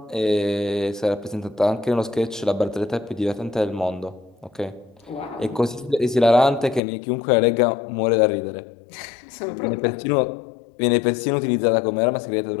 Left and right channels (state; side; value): drops out; right; at 6.8 s